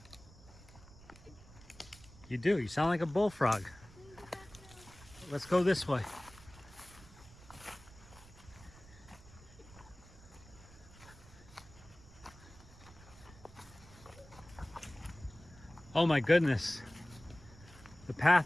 You do. You sound like a bullfrog. Let's go this way. Oh my goodness. The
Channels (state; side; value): noise; right; rumble, 20 dB below the sound